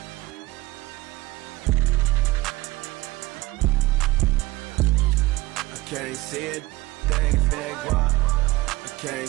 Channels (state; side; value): quieter; left; 19.7 dB